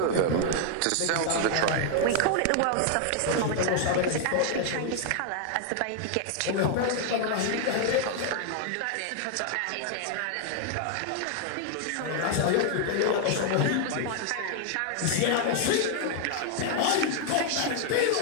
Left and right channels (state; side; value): different; both; correlation 0.00